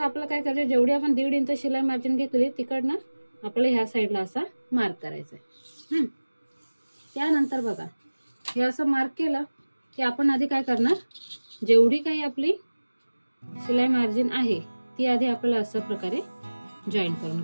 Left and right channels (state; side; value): inverted; both; correlation -1.00